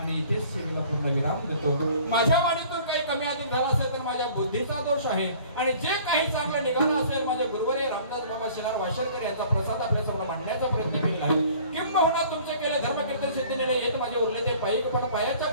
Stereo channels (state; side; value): inverted; both; correlation -0.50